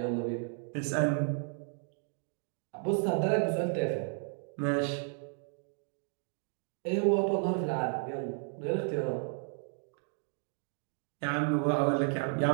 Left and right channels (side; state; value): left; silent; 56 dB below the other